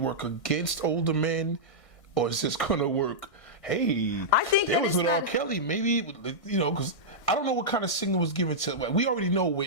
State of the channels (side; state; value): right; late; 1.6 ms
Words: work against older men? Or is this going to work, hey, I think there was with R. Kelly, maybe, because I don't know what kind of signal was given to, we already know